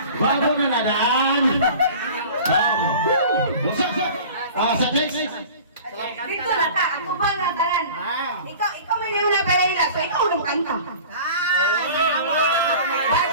Gwapo na nadaan. Sa next. Dito na ta, ako ba na tanan? Ikaw may niyo na palahila, so ikaw na kanta.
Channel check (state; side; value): inverted; both; correlation -0.41